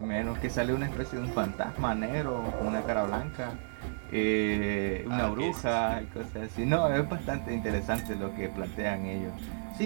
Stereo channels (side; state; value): left; silent; digital silence